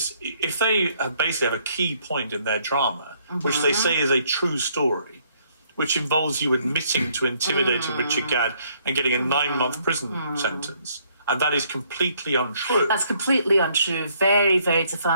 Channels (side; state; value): both; inverted; correlation -0.67